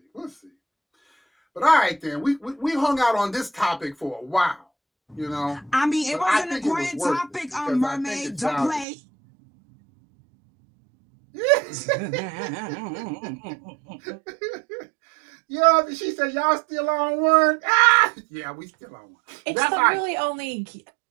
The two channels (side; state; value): left; drops out; at 8.8 s